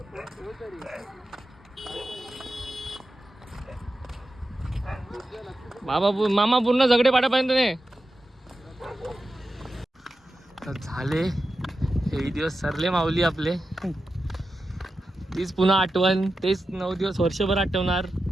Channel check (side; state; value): both; normal; correlation 0.91